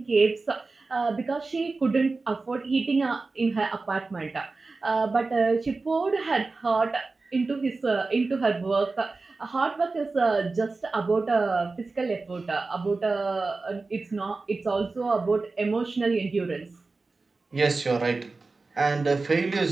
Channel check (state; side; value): quieter; left; 3.8 dB